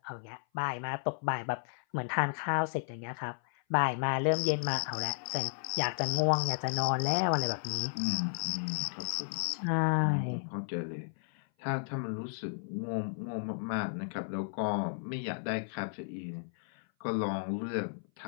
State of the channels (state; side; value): silent; right; 55 dB below the other